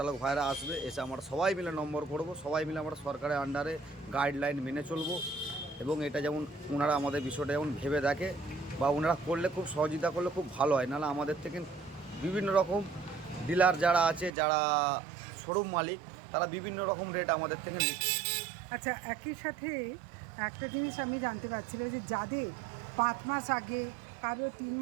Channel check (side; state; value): left; drops out; at 14.3 s